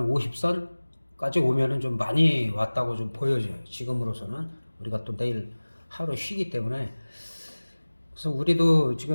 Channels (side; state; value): both; inverted; correlation -1.00